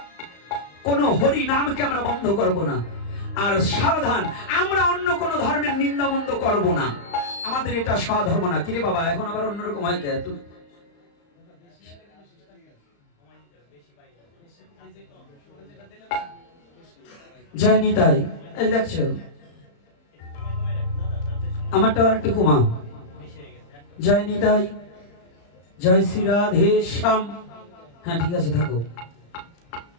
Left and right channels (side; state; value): right; late; 35 ms